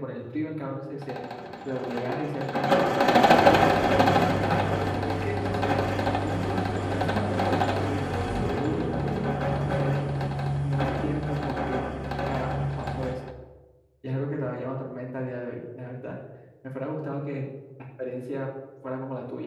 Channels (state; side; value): identical; both; correlation 1.00